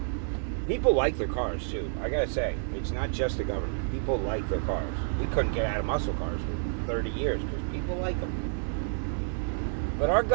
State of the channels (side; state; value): left; silent; digital silence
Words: People like their cars, too. I gotta say, it's not just the government. People like their cars. We couldn't get out of muscle cars for 30 years because people like them. But our